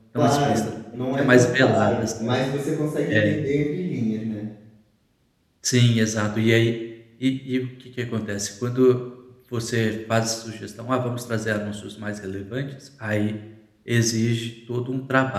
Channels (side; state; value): both; identical; correlation 1.00